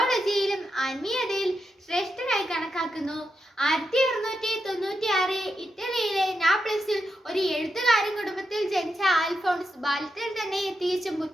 ആത്മീയതയിൽ ശ്രേഷ്ഠനായി കണക്കാക്കുന്നു. 1696 ഇറ്റലിയിലെ നാപ്ലിസിൽ ഒരു എഴുത്തുകാരൻ കുടുംബത്തിൽ ജനിച്ച അൽഫോൺസ് ബാല്യത്തിൽ തന്നെ തികച്ചും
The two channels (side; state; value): both; normal; correlation 0.86